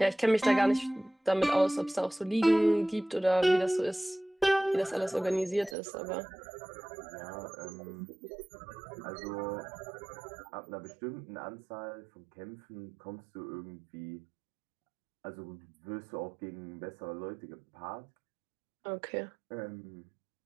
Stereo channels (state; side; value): drops out; left; at 5.8 s